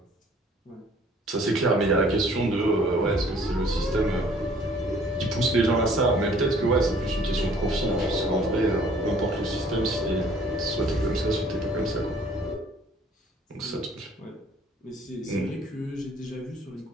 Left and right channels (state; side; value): normal; both; correlation 0.56